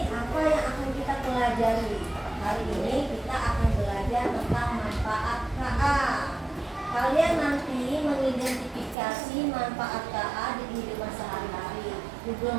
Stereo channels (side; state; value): left; drops out; at 9.0 s